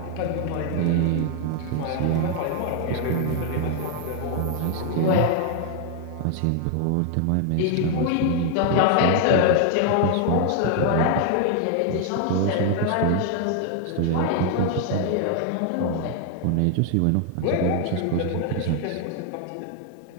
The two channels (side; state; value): both; different; correlation 0.00